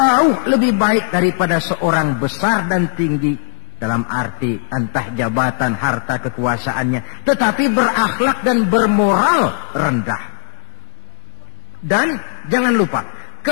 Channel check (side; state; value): right; silent; digital silence